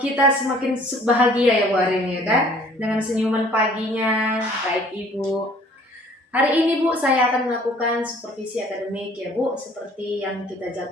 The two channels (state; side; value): normal; both; correlation 0.55